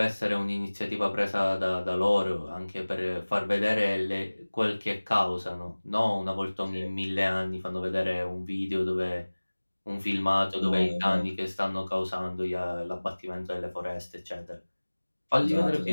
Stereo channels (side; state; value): both; inverted; correlation -1.00